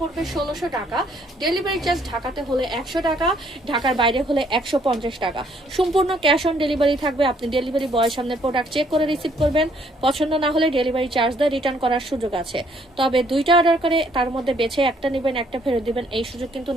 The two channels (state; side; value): normal; both; correlation 0.66